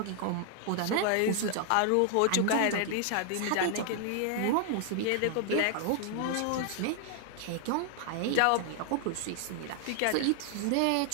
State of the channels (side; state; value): both; different; correlation 0.00